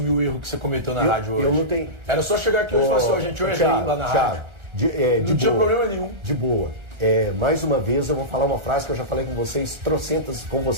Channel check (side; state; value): left; late; 1.3 ms